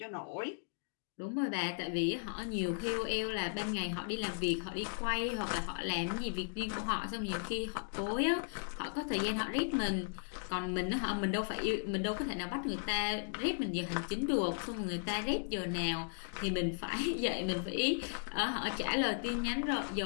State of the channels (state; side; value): silent; right; digital silence